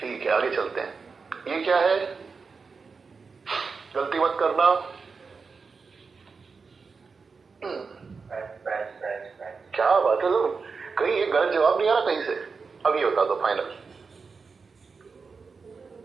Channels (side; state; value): left; quieter; 4.9 dB